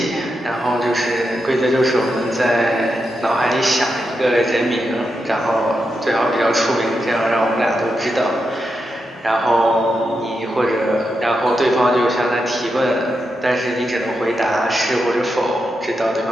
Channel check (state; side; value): normal; both; correlation 0.86